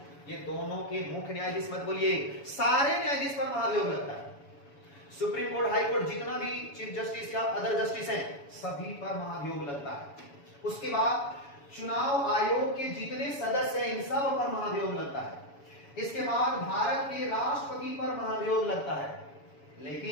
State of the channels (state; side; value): late; right; 7.1 ms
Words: ये दोनों के मुख्य न्यायाधीश मत बोलिए, सारे न्यायाधीश पर महाभियोग लगता है। सुप्रीम कोर्ट, हाई कोर्ट, जितना भी चीफ जस्टिस या अदर जस्टिस हैं, सभी पर महाभियोग लगता है। उसके बाद चुनाव आयोग के जितने सदस्य हैं, इन सब पर महाभियोग लगता है। इसके बाद भारत के राष्ट्रपति पर महाभियोग लगता है,